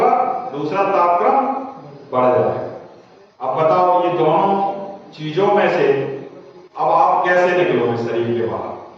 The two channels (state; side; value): identical; both; correlation 1.00